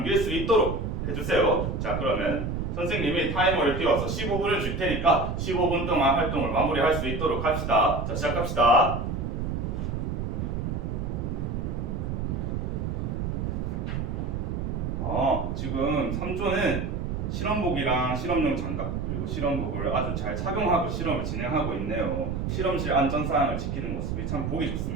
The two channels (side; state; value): right; noise; rumble, 2 dB below the sound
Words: 수 있도록 해주세요. 자, 그러면 선생님이 타이머를 띄워서 15분을 줄 테니까 15분 동안 활동을 마무리할 수 있도록 합시다. 자, 시작합시다. 지금 3조는 실험복이랑 실험용 장갑 그리고 실험복을 아주 잘 착용하고 실험을 진행하고 있네요. 실험실 안전사항을 지키는 모습이 참 보기